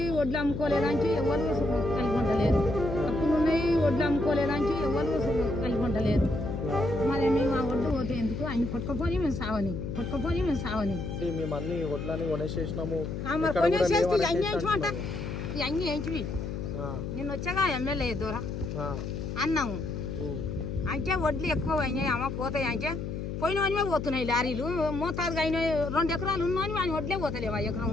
వడ్లు అమ్ముకోలేదాంచి ఎవరు కలిగి ఉండలేదు. అప్పులు ఉన్నాయి, వడ్లు అమ్ముకోలేదాంచి ఎవరు కలిగి ఉండలేదు. మరి మేము ఆ వడ్లు పోతే ఎందుకు ఆయన కొట్టుకపోయి మేము సావని మేము అన్ని వడ్లని కొనేసేసినాము. మరి కొనేసేసి అన్ని వేయించమంట అన్ని వేయించి నిన్న వచ్చాగా ఎమ్మెల్యే దూర అన్నాము. అంటే వడ్లు ఎక్కువ అయినాయి అమ్మ పోతాయి. అంటే పోయినవనివే పోతున్నాయి లారీలు. మోతాదుగా అయిన 2 ఎకరాలు ఉన్నాయని ఆయన వడ్లే పోతలేవు. 1 ఎకరం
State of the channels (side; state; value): left; noise; hum, 5 dB below the sound